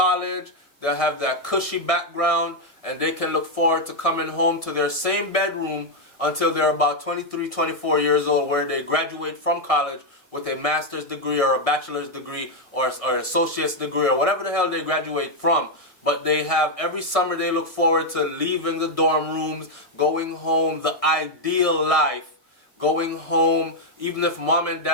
they'll have that cushy background, and they can look forward to coming home to their same bedroom until they're about 23, 24 years old, where they graduate from college with a master's degree or a bachelor's degree or an associate's degree or whatever the hell they graduate from. But they have, every summer they look forward to leaving the dorm rooms, going home, the ideal life, going home, even if mom and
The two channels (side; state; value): right; late; 1.6 ms